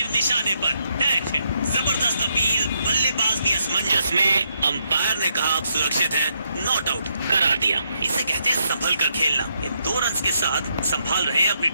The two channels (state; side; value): inverted; both; correlation -0.77